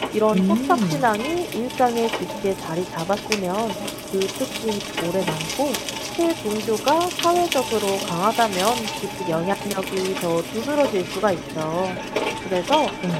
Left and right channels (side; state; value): both; identical; correlation 1.00